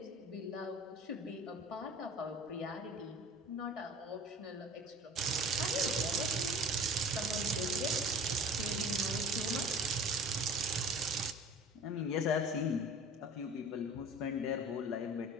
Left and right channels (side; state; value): both; normal; correlation 0.43